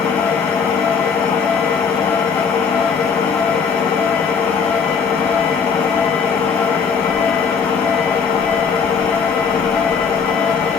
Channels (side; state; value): right; quieter; 6.0 dB